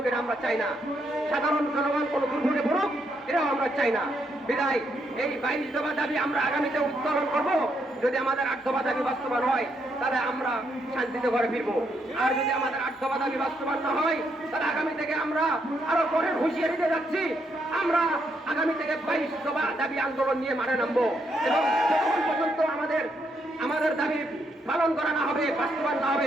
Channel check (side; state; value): both; normal; correlation 0.77